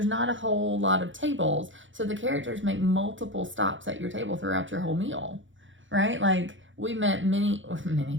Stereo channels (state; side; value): late; left; 0.56 ms